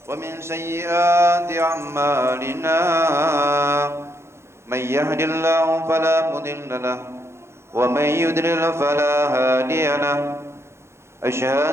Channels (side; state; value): left; late; 0.13 ms